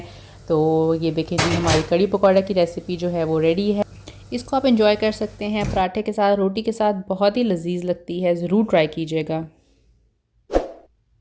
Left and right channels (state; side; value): identical; both; correlation 1.00